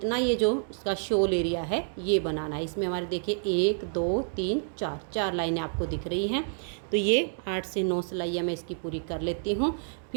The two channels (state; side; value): silent; left; digital silence